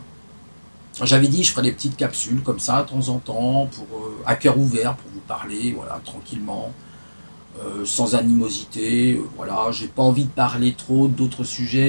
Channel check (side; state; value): both; inverted; correlation -1.00